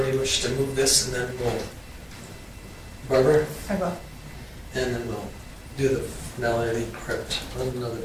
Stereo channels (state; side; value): identical; both; correlation 1.00